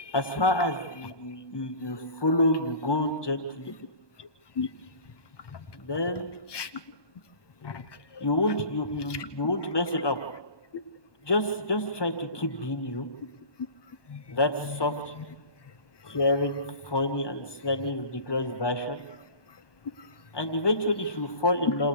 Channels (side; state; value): right; late; 1.2 ms